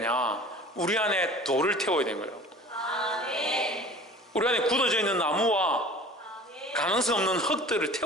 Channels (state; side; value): normal; both; correlation 0.43